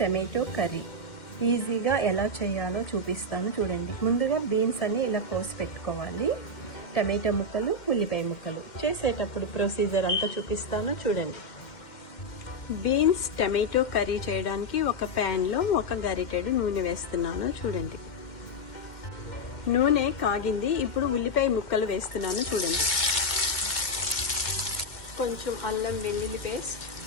కర్రీ ఈజీగా ఎలా చేయాలో చూపిస్తాను. చూడండి, ముందుగా బీన్స్ అన్ని ఇలా కోసి పెట్టుకోవాలి. టమాటో ముక్కలు, ఉల్లిపాయ ముక్కలు. చేసేటప్పుడు ప్రొసీజర్ అంతా చూపిస్తాను. చూడండి, బీన్స్ టమాటో కర్రీ చేయడానికి ఒక ప్యాన్లో ఒక గరిటెడు నూనె వేస్తున్నాను. చూడండి, నూనె కాగింది. ఇప్పుడు ఉల్లిపాయ ముక్కలు వేస్తున్నాను. చూడండి, కొంచెం అల్లం వెల్లుల్లి పేస్ట్,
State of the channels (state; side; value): late; right; 2.1 ms